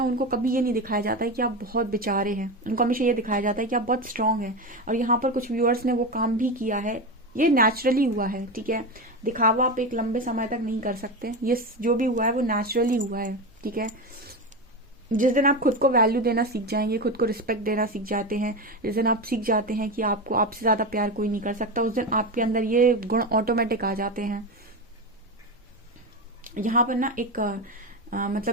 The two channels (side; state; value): both; normal; correlation 0.18